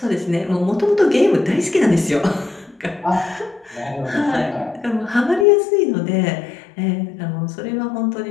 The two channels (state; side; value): drops out; right; at 5.5 s